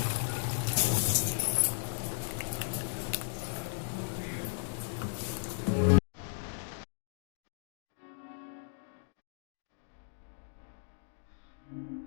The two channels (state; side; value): silent; right; digital silence